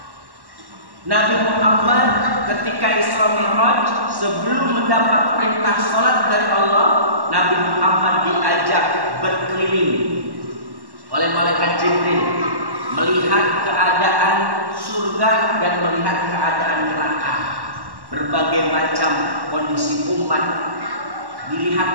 Nabi Muhammad ketika Isra Mi'raj, sebelum mendapat perintah sholat dari Allah, Nabi Muhammad diajak berkeliling oleh malaikat Jibril, melihat keadaan surga dan melihat keadaan neraka. Berbagai macam kondisi umat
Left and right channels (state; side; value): late; left; 1.1 ms